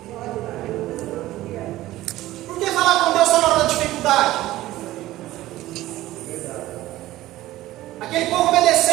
Por que falar com Deus só na hora da dificuldade? Aquele povo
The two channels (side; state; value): left; quieter; 16.0 dB